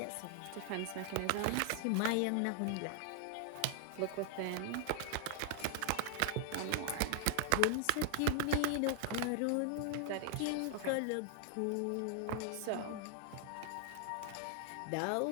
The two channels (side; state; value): both; different; correlation 0.00